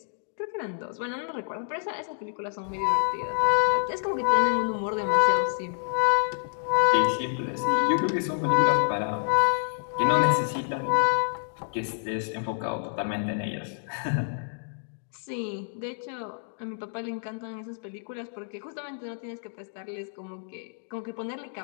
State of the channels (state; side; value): silent; right; digital silence